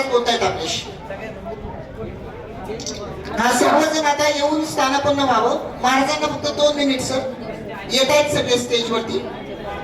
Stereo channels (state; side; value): identical; both; correlation 1.00